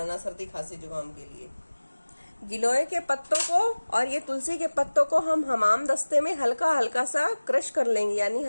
सर्दी खांसी जुकाम के लिए। गिलोय के पत्तों को और ये तुलसी के पत्तों को हम हमाम दस्ते में हल्का हल्का सा क्रश कर लेंगे, यानी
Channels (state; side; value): inverted; both; correlation -1.00